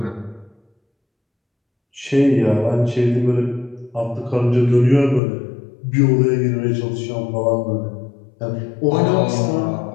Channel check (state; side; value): drops out; right; at 5.2 s